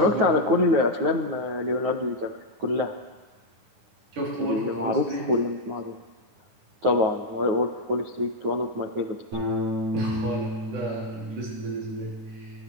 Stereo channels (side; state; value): left; late; 9.4 ms